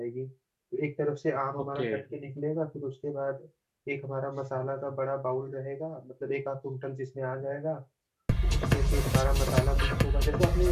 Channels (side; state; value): both; identical; correlation 1.00